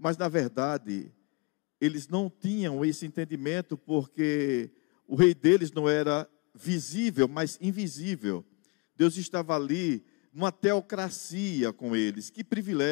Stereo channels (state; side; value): quieter; right; 29.0 dB